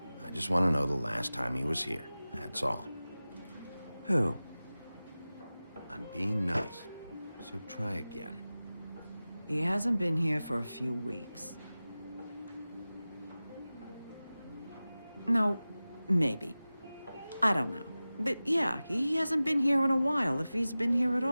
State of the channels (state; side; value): inverted; both; correlation -0.97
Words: I just want to know the last time he was here. That's all. Who? I'm being nice, so try again. He hasn't been here for a few weeks. No, maybe. I don't know. But yeah, he hasn't been here in a while, if he's been here at